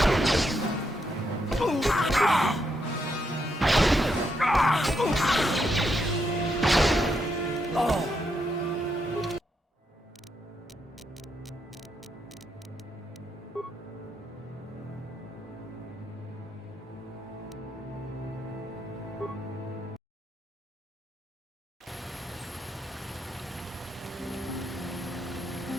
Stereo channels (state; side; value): normal; both; correlation 0.80